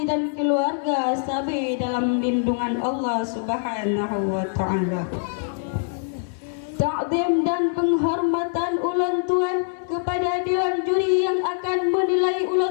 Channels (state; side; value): silent; right; digital silence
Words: dan keluarga sabi dalam lindungan Allah Subhanahu wa taala. Ta'zim dan penghormatan ulang tuan kepada dewan juri yang akan menilai